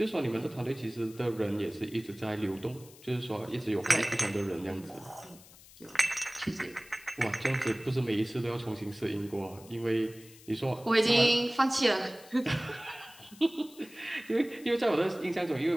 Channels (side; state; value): left; noise; hiss, 22 dB below the sound